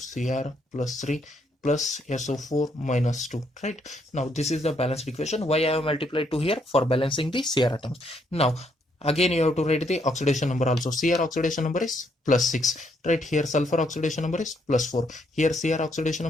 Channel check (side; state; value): both; normal; correlation 0.73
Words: plus 3 plus SO4 minus 2. Right. Now this is the balanced equation. Why I have multiplied 2 here? For balancing the Cr atoms. Now again you have to write the oxidation number also. Cr oxidation number is plus 6. Right, here sulfur oxidation number is plus 4. Here Cr oxidation